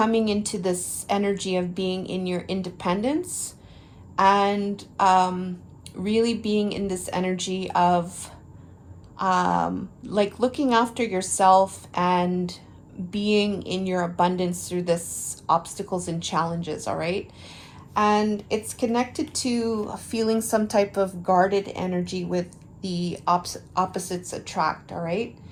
into this energy of being in your independence and really being in this energy of like looking after yourself and being in your abundance through this obstacles and challenges, all right? And it's connected to feeling some type of guarded energy with the opposites attract, all right?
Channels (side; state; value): both; identical; correlation 1.00